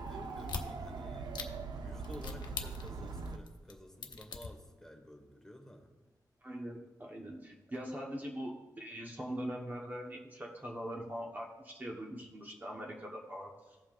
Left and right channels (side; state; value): both; normal; correlation 0.74